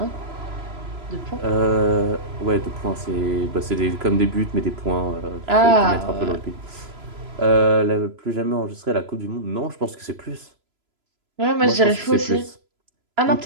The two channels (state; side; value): late; left; 3.0 ms